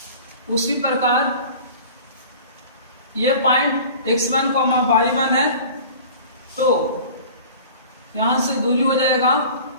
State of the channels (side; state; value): both; inverted; correlation -0.42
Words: उसी प्रकार ये पॉइंट x1, y1 है, तो यहां से दूरी हो जाएगा,